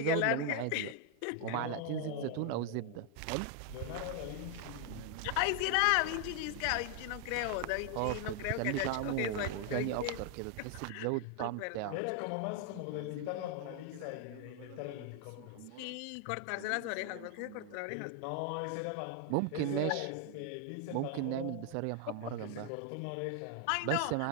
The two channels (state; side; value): different; both; correlation 0.00